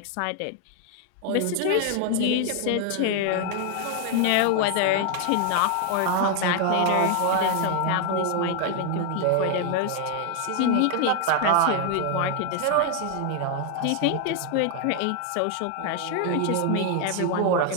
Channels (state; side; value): different; both; correlation 0.00